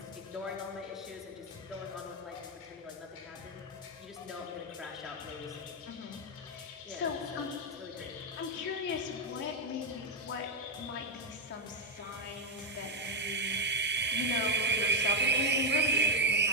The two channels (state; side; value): normal; both; correlation 0.04